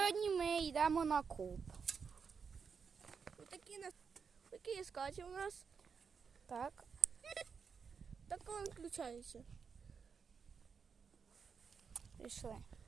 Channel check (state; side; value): quieter; left; 5.9 dB